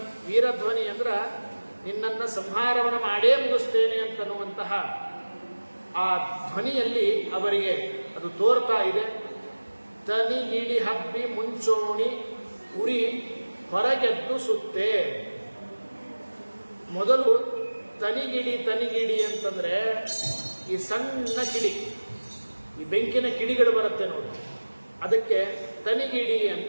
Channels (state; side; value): inverted; both; correlation -1.00